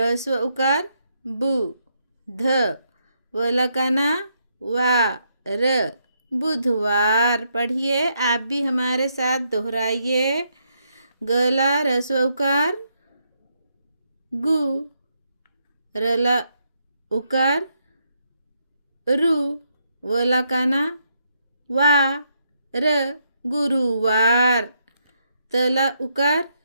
उकार बु, ध, वला काना वा, र, बुधवार। पढ़िए, आप भी हमारे साथ दोहराइए। गला रस्व उकार गु, रला उकार रु, वला काना वा, र, गुरुवार। तला उकार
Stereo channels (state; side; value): inverted; both; correlation -0.77